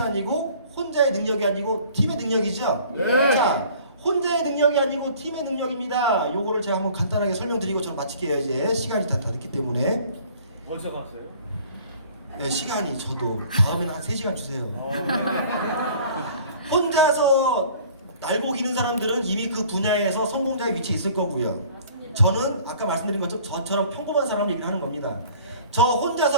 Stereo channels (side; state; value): both; inverted; correlation -0.51